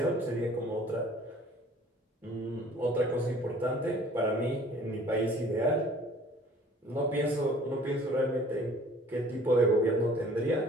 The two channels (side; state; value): both; normal; correlation 0.52